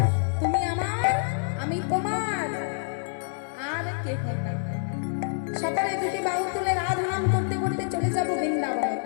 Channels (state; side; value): silent; right; digital silence